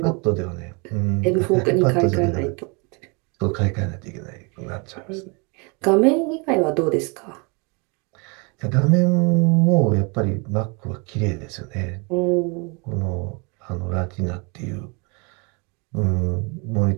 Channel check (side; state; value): left; quieter; 31.5 dB